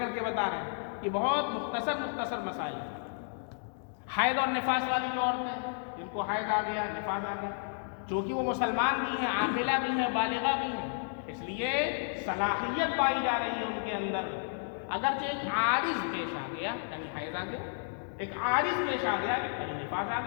کے بتا رہے ہیں کہ بہت مختصر مسائل ہیں. حیض اور نفاس والی جو عورتیں جن کو حیض آ گیا، نفاس آ گیا، چونکہ وہ مسلمان بھی ہیں، عاقلہ بھی ہیں، بالغہ بھی ہیں، اس لیے صلاحیت پائی جا رہی ہے ان کے اندر. اگرچہ ایک عارض پیش آ گیا یعنی حیض آ گیا ایک عارض پیش آ گیا، کہیں نفاذ آ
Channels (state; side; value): silent; right; digital silence